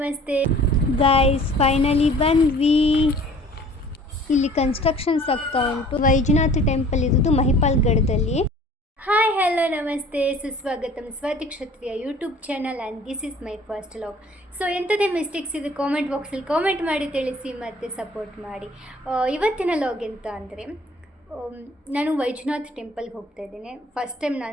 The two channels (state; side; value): normal; both; correlation 0.50